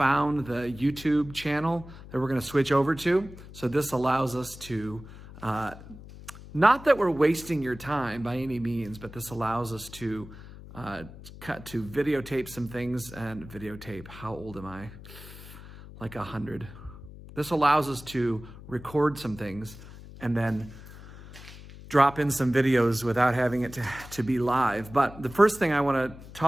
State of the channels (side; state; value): left; noise; hum, 16 dB below the sound